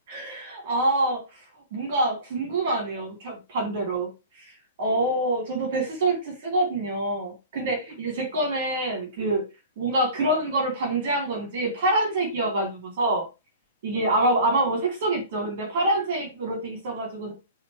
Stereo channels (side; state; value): both; inverted; correlation -0.40